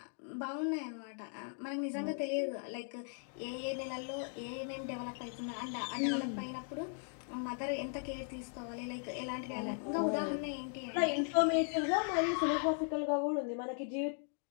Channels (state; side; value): silent; right; 52 dB below the other